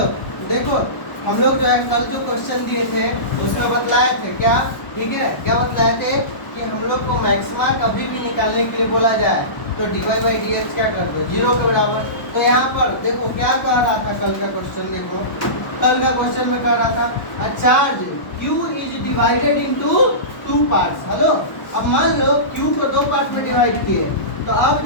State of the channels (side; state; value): right; late; 1.1 ms